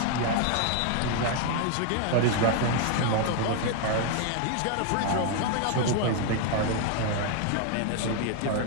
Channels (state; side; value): different; both; correlation 0.00